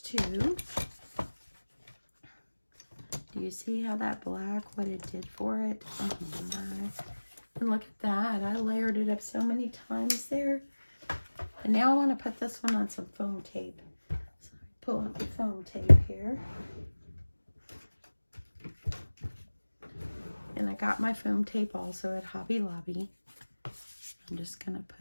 too. Do you see how that black, what it did for it? Oh my. And look at that. I layered it up so many times there. And now I want to put this one on some foam tape. So pull out the foam tape here. And I got my foam tape also at Hobby Lobby. I'm just going to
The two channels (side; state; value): both; inverted; correlation -1.00